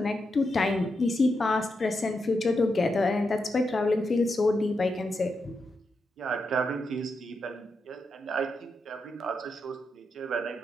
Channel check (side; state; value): both; normal; correlation 0.85